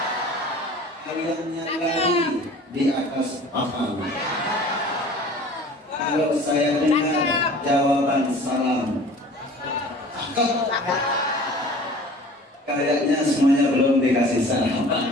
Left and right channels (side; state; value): both; normal; correlation 0.45